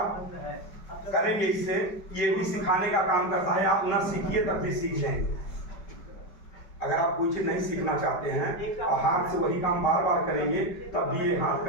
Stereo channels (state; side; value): late; right; 5.0 ms